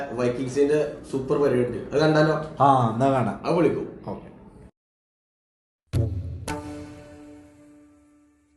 വൈക്കിങ്സിന്റെ സൂപ്പർ പരിപാടി ഉണ്ട്, അത് കണ്ടാലോ? എന്നാ കാണാം, അത് വിളിക്കും. ഓക്കെ.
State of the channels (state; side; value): identical; both; correlation 1.00